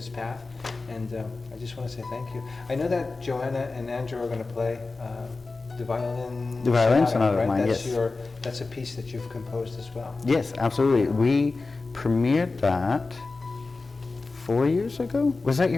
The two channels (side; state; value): right; quieter; 3.7 dB